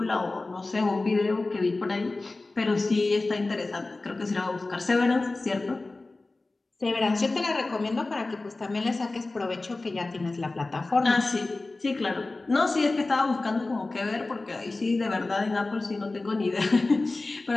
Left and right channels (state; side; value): quieter; right; 3.2 dB